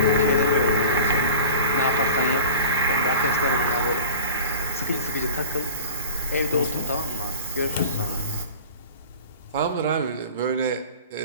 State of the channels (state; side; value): inverted; both; correlation -0.38